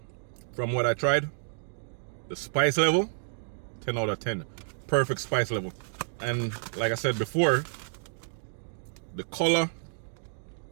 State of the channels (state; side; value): silent; left; digital silence